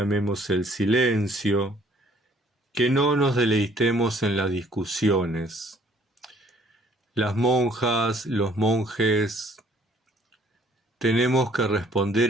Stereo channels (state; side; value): normal; both; correlation 0.60